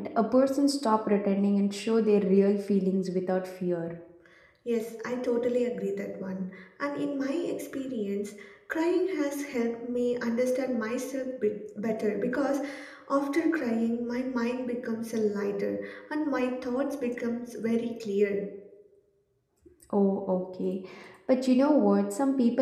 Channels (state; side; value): identical; both; correlation 1.00